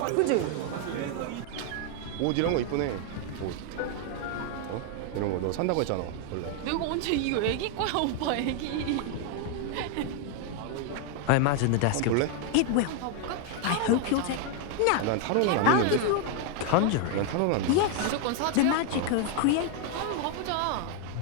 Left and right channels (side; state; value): both; different; correlation 0.00